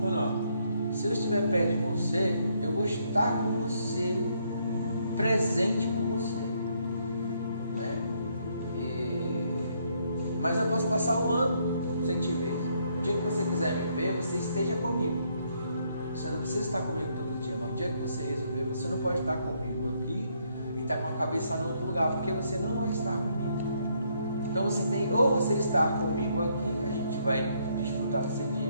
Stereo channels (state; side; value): inverted; both; correlation -0.72